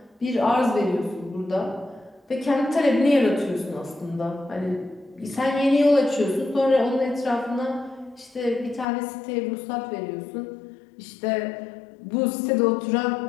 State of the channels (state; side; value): drops out; right; at 8.8 s